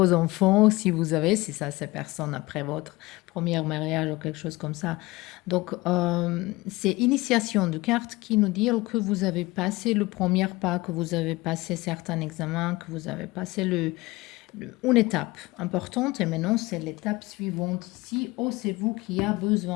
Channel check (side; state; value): right; quieter; 21.2 dB